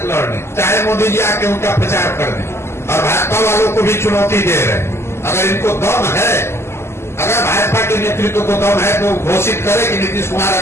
लड़ लें, चाहे मोदी जी आके उनका प्रचार कर दें। और भाजपा वालों को भी चुनौती दे रहे हैं, अगर इनको दम है, अगर भाजपा के नेतृत्व को दम है तो घोषित करे कि नीतीश कुमार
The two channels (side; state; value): right; late; 0.12 ms